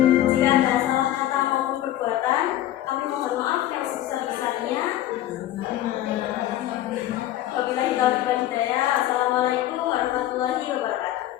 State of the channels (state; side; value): quieter; right; 13.5 dB